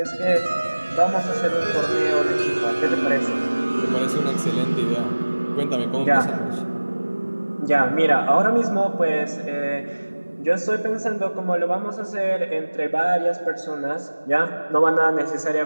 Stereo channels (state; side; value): inverted; both; correlation -1.00